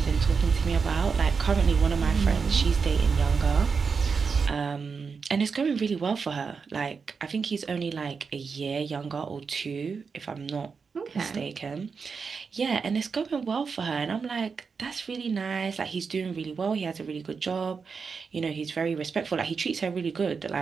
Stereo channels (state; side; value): quieter; left; 5.4 dB